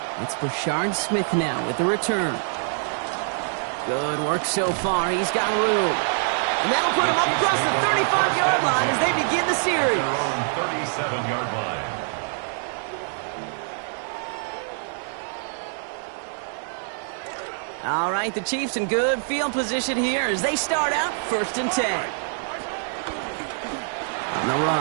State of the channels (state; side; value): silent; left; 62 dB below the other